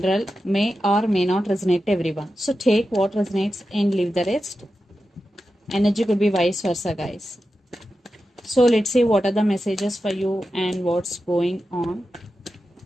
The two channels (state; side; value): normal; both; correlation 0.91